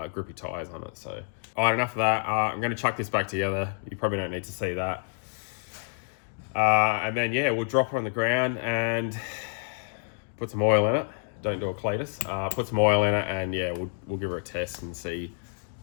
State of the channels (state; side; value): silent; right; 59 dB below the other